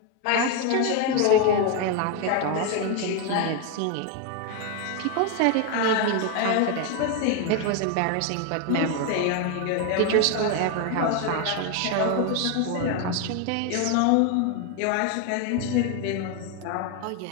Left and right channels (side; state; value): both; different; correlation 0.01